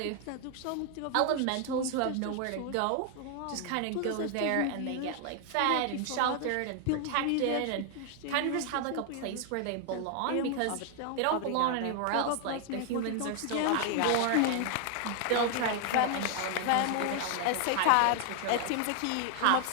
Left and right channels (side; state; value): both; different; correlation 0.00